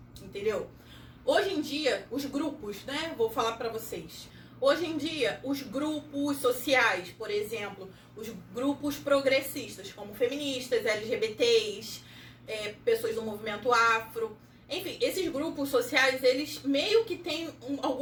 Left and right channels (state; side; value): identical; both; correlation 1.00